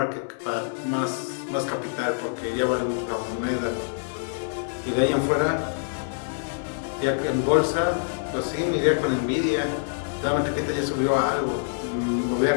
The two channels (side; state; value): right; silent; digital silence